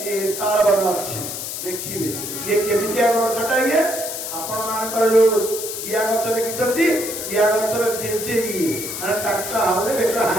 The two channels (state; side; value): noise; left; hiss, 6 dB below the sound